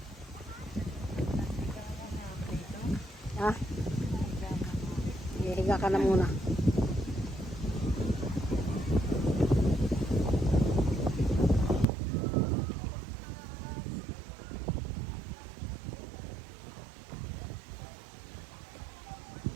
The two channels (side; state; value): left; drops out; at 11.9 s